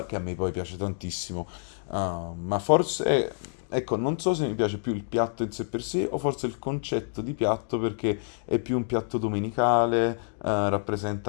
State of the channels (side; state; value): right; silent; digital silence